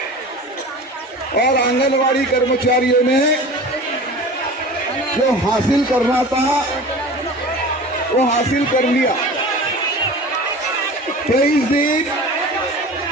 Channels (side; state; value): both; normal; correlation 0.37